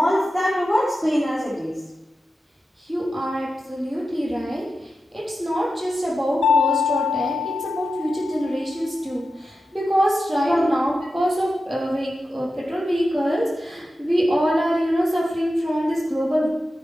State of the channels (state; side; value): normal; both; correlation 0.91